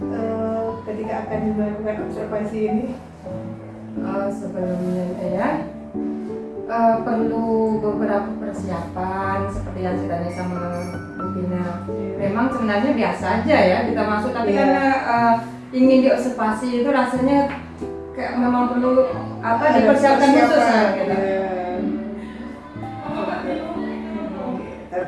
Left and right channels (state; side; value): identical; both; correlation 1.00